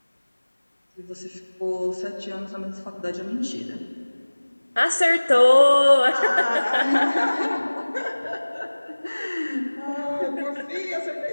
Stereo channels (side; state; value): both; inverted; correlation -1.00